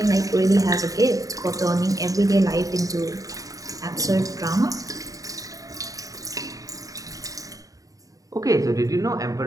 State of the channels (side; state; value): left; late; 0.17 ms